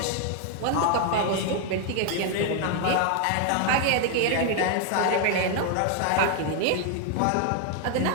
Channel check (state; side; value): different; both; correlation 0.00